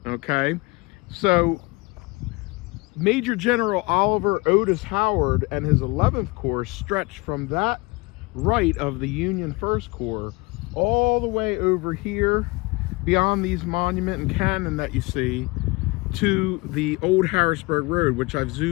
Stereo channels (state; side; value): quieter; right; 25.3 dB